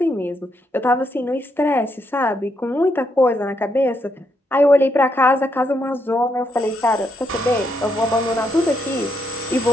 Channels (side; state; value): both; normal; correlation 0.78